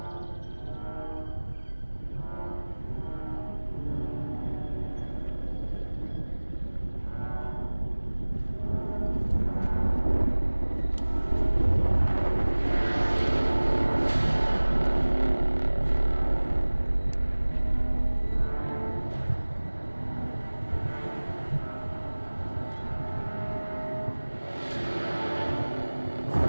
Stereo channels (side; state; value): both; inverted; correlation -1.00